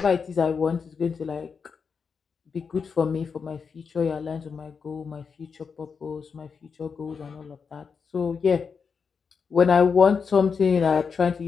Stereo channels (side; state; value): right; quieter; 5.8 dB